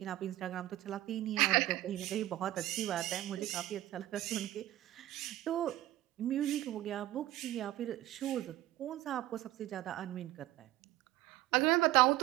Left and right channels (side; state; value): left; quieter; 15.5 dB